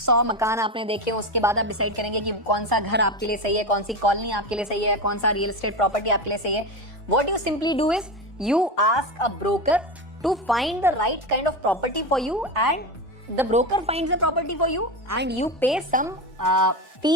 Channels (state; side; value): normal; both; correlation 0.19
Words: मकान आपने देखे, उसके बाद आप डिसाइड करेंगे कि कौन सा घर आपके लिए सही है, कौन सी कॉलोनी आपके लिए सही है, कौन सा रियल एस्टेट प्रॉपर्टी आपके लिए सही है। What you simply do is you ask a broker to find the right kind of property for you and the broker finds the property for you and you pay some